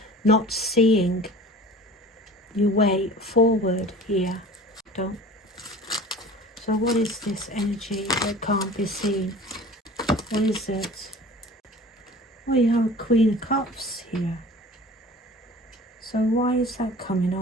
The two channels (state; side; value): normal; both; correlation 0.42